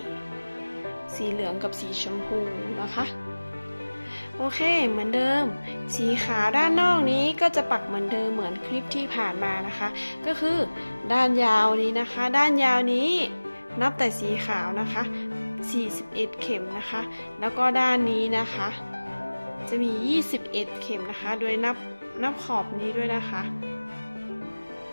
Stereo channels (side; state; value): both; inverted; correlation -1.00